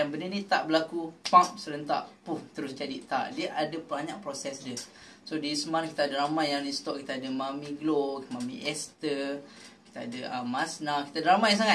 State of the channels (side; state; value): both; identical; correlation 1.00